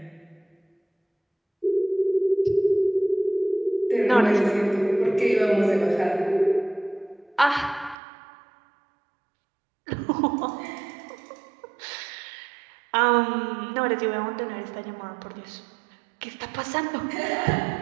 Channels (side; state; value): left; drops out; at 8.0 s